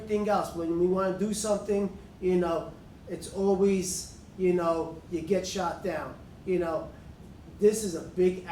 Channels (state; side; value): identical; both; correlation 1.00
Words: else, when we want to do something, you know, it's always, you know, you get shot down. You know, this is a big